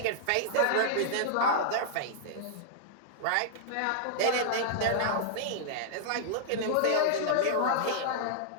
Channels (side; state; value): both; different; correlation -0.01